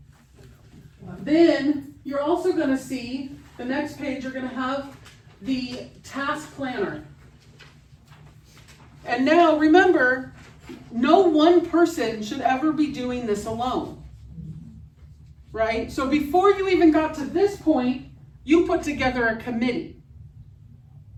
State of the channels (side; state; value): both; identical; correlation 1.00